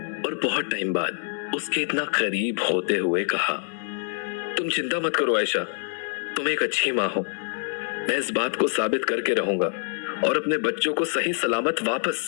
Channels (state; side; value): silent; right; 61 dB below the other